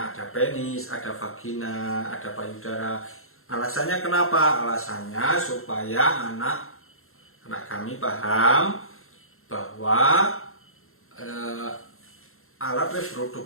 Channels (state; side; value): late; right; 0.62 ms